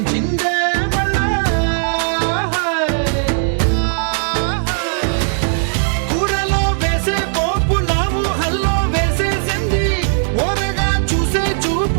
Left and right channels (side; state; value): left; silent; digital silence